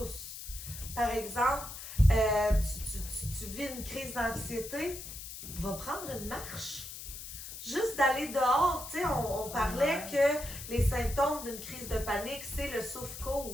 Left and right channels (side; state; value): left; noise; hiss, 10 dB below the sound